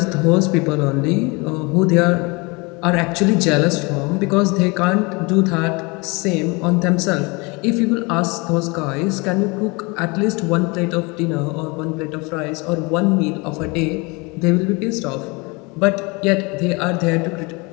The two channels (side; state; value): right; quieter; 27.6 dB